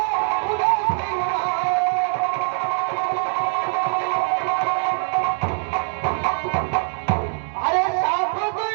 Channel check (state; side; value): silent; left; 64 dB below the other